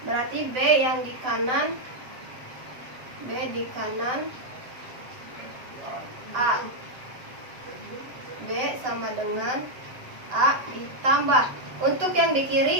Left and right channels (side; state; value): left; late; 7.9 ms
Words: Berarti B yang di kanan, B di kanan A, B sama dengan A ditambah. Untuk yang di